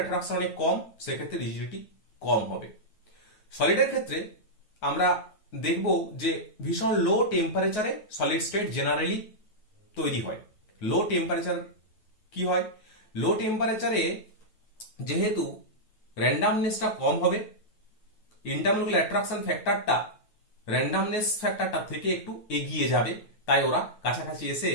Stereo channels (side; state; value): right; late; 9.4 ms